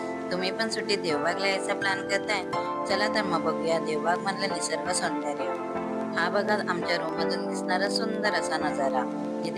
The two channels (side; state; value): both; identical; correlation 1.00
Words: तुम्ही पण सुट्टीत देवबागला यायचा प्लॅन करताय? चला तर मग बघूया देवबाग मधलं निसर्ग सौंदर्य. हा बघा आमच्या रूममधून दिसणारा सुंदर असा नजारा,